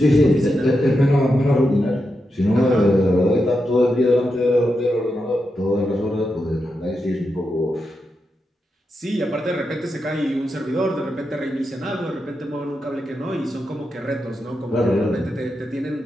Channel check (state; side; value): normal; both; correlation 0.87